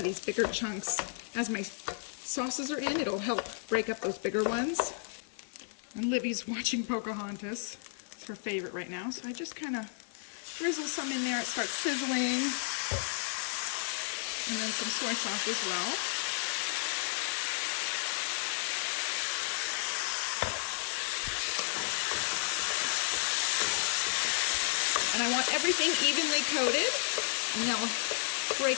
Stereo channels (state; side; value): silent; right; 56 dB below the other